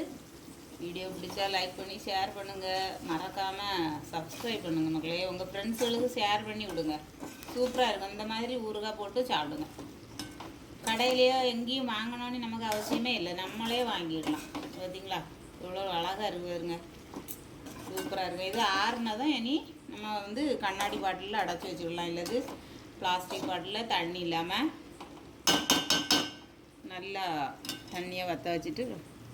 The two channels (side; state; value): both; identical; correlation 1.00